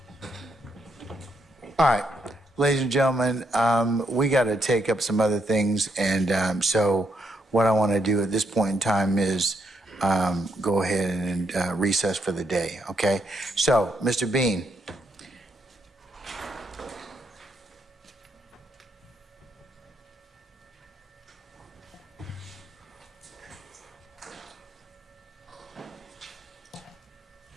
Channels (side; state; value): both; normal; correlation 0.77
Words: All right, ladies and gentlemen, we got to take up some other things, and so what I want to do at this point in time is go ahead and recess for the day, okay? So, Mr. Bean.